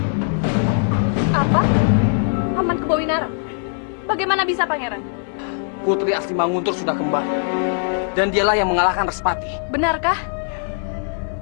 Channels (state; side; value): silent; right; digital silence